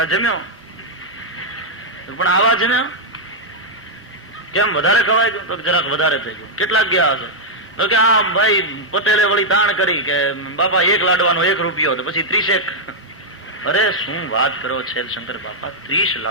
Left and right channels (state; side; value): normal; both; correlation -0.03